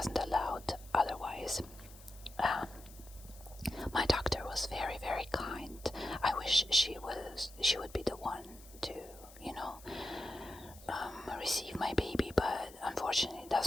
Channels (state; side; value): noise; left; hiss, 20 dB below the sound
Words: allowed otherwise. My doctor was very, very kind. I wish she would be the one to receive my baby, but unfortunately it